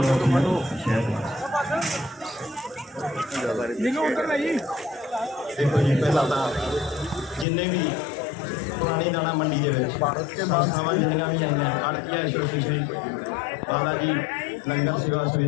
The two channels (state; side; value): drops out; right; at 7.5 s